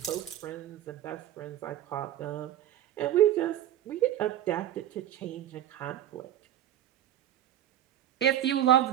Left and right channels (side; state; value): left; quieter; 11.7 dB